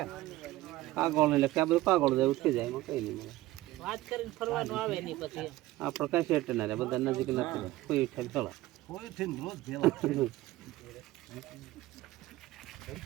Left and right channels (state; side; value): quieter; left; 17.0 dB